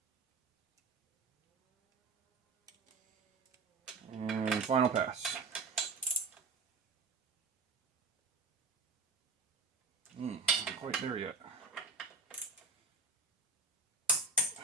And final pass. Not quite there yet.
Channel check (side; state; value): left; quieter; 4.0 dB